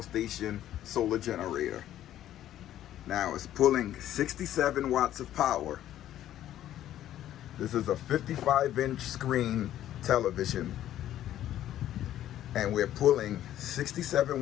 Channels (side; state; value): right; quieter; 12.2 dB